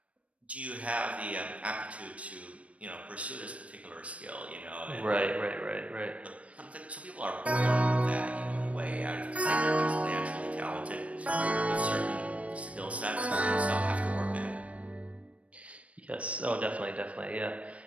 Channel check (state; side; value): late; left; 0.064 ms